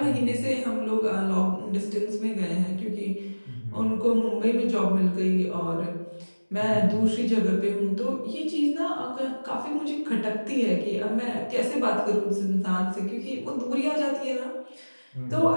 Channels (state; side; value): inverted; both; correlation -1.00